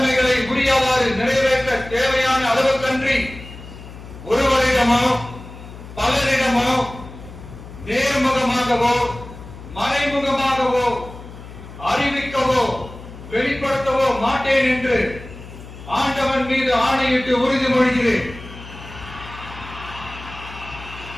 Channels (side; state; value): left; noise; hum, 15 dB below the sound